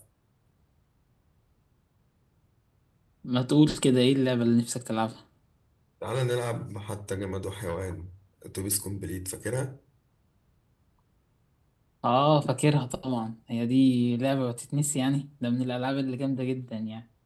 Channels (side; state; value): both; identical; correlation 1.00